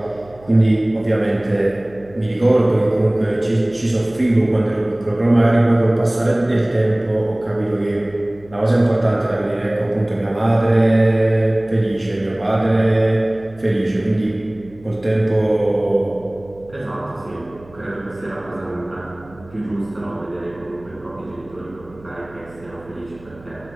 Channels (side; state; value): right; noise; hum, 23 dB below the sound